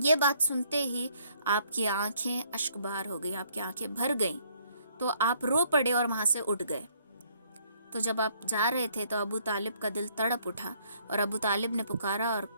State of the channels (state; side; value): inverted; both; correlation -0.66